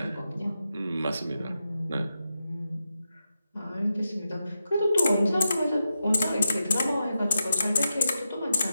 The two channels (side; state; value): both; inverted; correlation -0.88